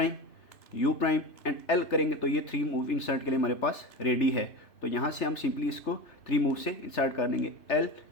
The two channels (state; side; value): late; right; 3.4 ms